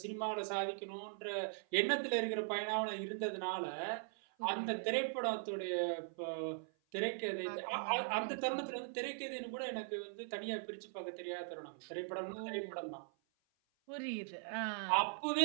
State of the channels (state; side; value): silent; left; 51 dB below the other